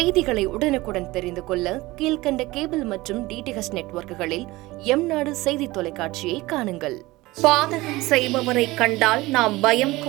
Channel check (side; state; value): left; quieter; 19.9 dB